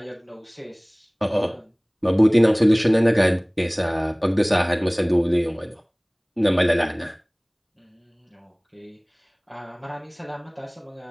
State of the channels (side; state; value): both; identical; correlation 1.00